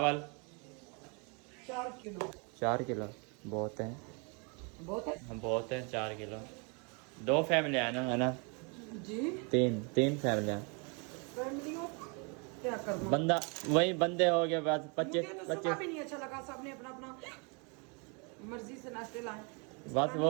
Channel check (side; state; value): left; quieter; 33.6 dB